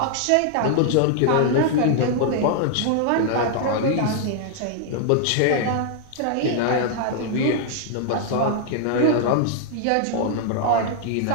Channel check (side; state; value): both; different; correlation 0.00